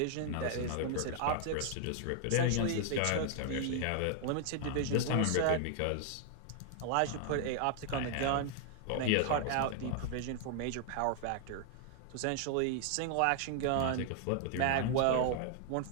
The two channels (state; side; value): different; both; correlation 0.00